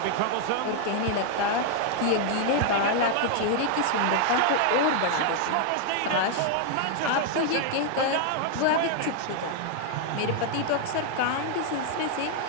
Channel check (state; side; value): different; both; correlation 0.00